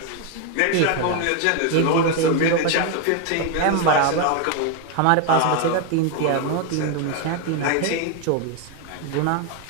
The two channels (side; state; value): both; different; correlation 0.01